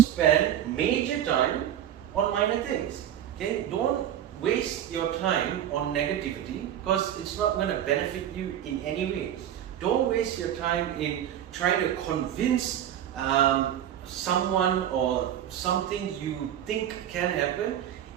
major time on minor things, okay? Don't waste your time on negativity, because it's not going to benefit you in any way. Don't waste your time in trying to convince someone or something you think can happen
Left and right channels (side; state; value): left; quieter; 10.7 dB